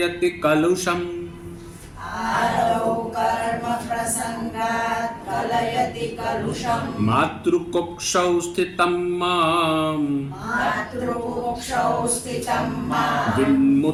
કલુષમ. આદૌ કર્મ પ્રસંગાત કલયતિ કલુષમ. માતૃકુક્ષૌ સ્થિતમ મામ માતૃકુક્ષૌ સ્થિતમ મામ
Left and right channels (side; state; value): both; identical; correlation 1.00